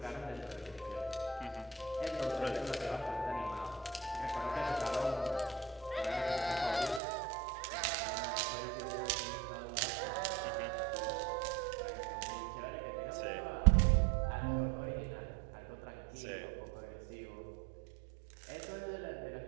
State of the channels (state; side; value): drops out; left; at 7.0 s